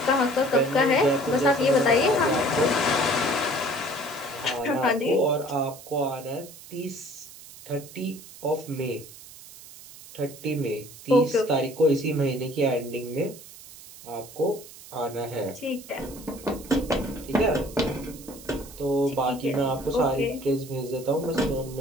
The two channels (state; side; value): noise; right; hiss, 18 dB below the sound